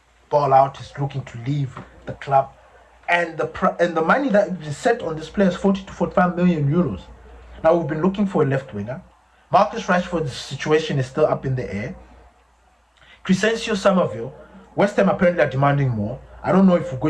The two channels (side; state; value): both; identical; correlation 1.00